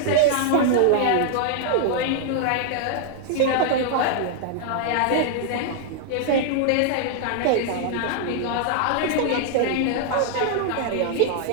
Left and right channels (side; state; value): both; different; correlation -0.01